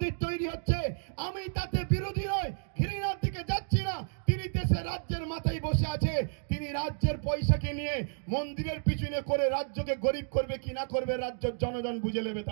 তৈরি হচ্ছে। আমি তাতে বিরোধী নয়, ঘৃণার দিকে যাচ্ছি না। তিনি দেশে রাজ্যের মাথায় বসে আছে, তিনি রাজ্যের পয়সাকে নিয়ে মন্দিরের পিছনে করে রাজ্যকে গরিব করবে কি না করবে রাজ্যের জনগণ বুঝে নেবে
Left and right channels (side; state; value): left; silent; digital silence